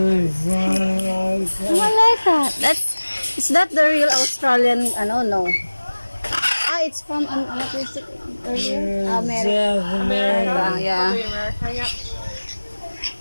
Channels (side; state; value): both; inverted; correlation -1.00